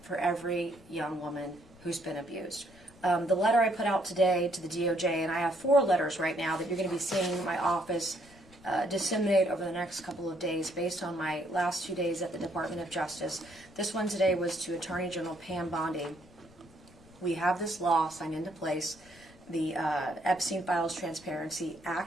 for every young woman who's been abused. The letter I put out today to the DOJ, and I have 4 letters right now that you're going to be seeing in my office disseminate over the next couple of days based on my last 2 days at the Department of Justice. This one today was to Attorney General Pam Bondi. We have this law signed into place, the Epstein Files Transparency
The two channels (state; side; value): noise; left; rumble, 25 dB below the sound